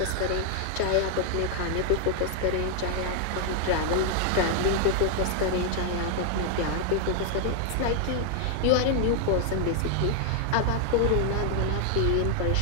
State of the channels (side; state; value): both; different; correlation 0.00